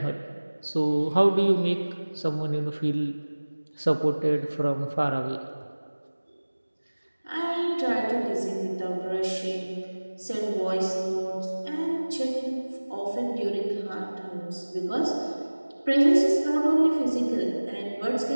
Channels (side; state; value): both; inverted; correlation -1.00